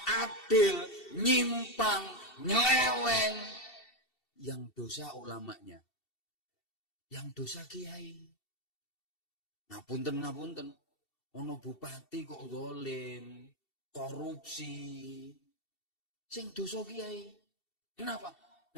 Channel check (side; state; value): right; late; 2.7 ms